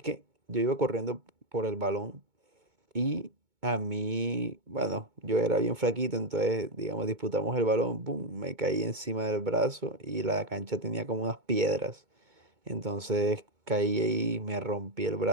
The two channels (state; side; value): late; left; 2.2 ms